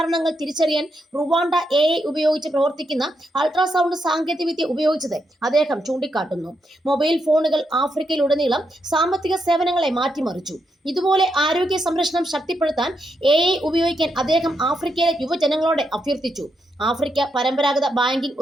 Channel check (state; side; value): normal; both; correlation 0.82